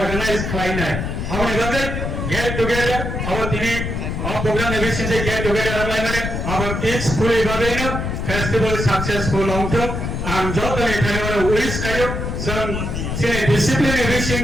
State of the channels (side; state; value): left; noise; rumble, 3 dB below the sound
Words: khlaina amone babe get together our tini program eviction se get together amai mane our peacefully babe no festival successful long term and joto ekhane mane wish kayo some discipline eviction